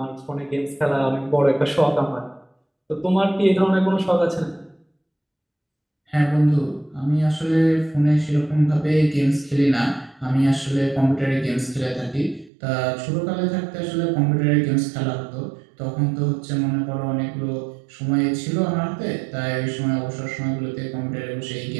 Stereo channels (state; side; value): drops out; left; at 12.5 s